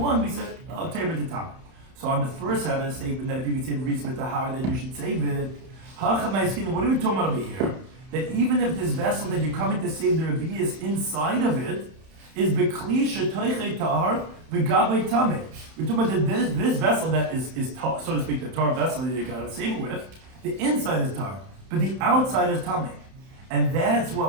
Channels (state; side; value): late; left; 31 ms